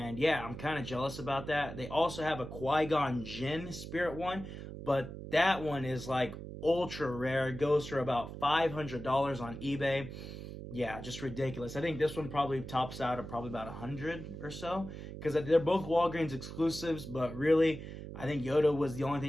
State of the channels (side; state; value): right; noise; hum, 10 dB below the sound